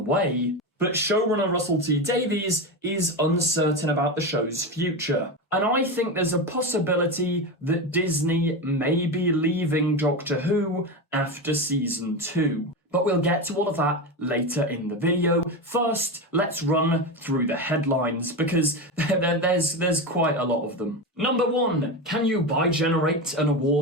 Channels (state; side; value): normal; both; correlation 0.18